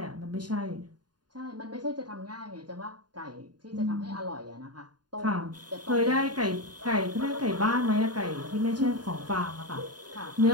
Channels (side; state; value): left; late; 0.70 ms